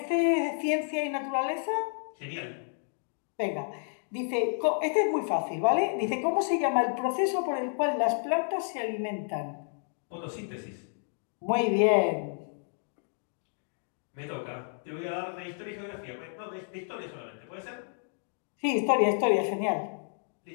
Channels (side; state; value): right; silent; 57 dB below the other